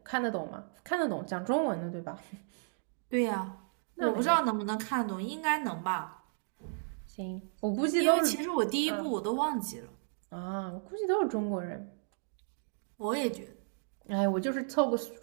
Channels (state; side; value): silent; left; digital silence